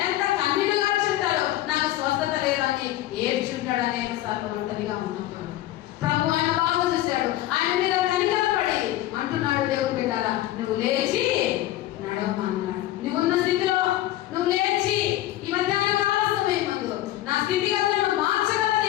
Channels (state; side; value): quieter; right; 14.7 dB